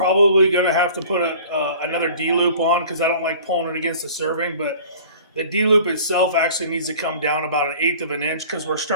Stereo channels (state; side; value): inverted; both; correlation -0.46